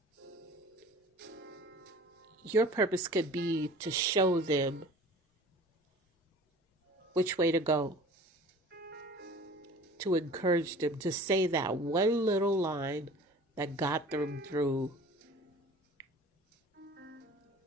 Your purpose could be to show them which way to go. To encourage them to say that one little line that got them through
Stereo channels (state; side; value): normal; both; correlation 0.44